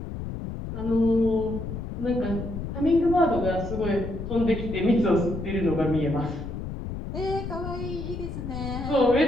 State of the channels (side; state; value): left; noise; rumble, 7 dB below the sound